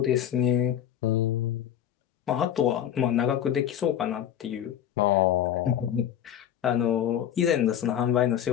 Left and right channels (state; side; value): quieter; right; 10.2 dB